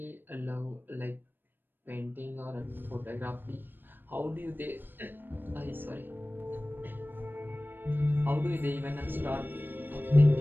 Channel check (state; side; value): late; left; 0.095 ms